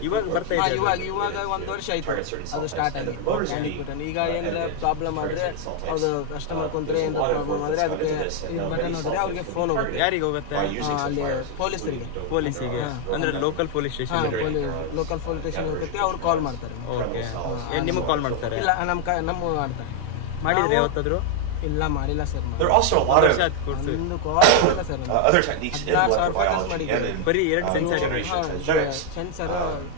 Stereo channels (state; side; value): different; both; correlation 0.00